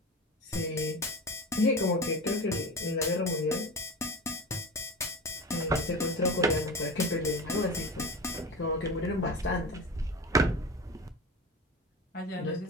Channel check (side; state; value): both; normal; correlation 0.29